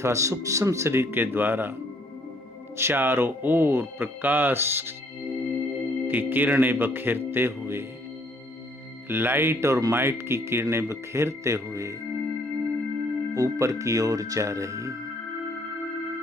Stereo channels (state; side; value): normal; both; correlation 0.64